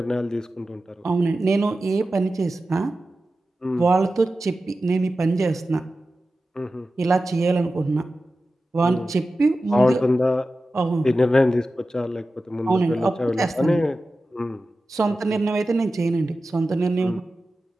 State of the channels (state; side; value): normal; both; correlation 0.94